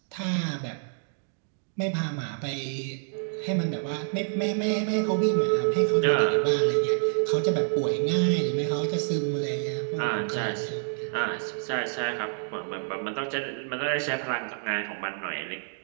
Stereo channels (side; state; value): left; silent; digital silence